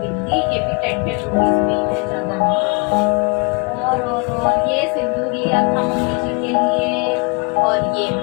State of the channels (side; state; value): right; quieter; 32.3 dB